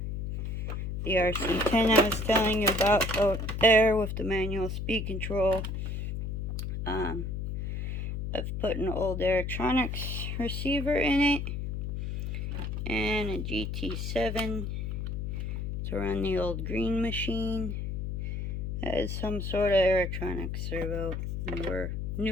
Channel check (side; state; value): left; noise; hum, 3 dB below the sound